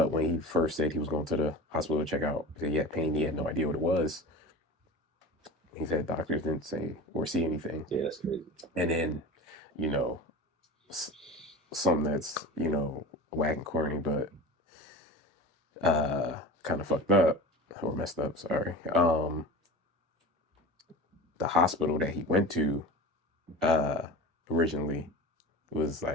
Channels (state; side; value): normal; both; correlation 0.32